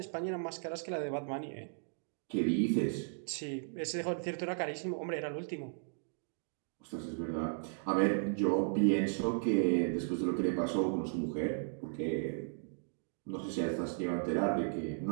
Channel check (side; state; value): left; silent; digital silence